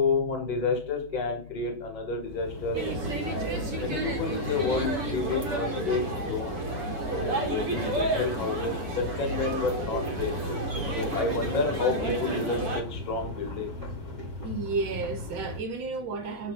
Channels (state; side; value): late; left; 7.0 ms